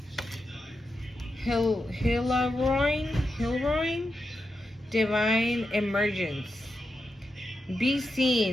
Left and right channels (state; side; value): normal; both; correlation 0.87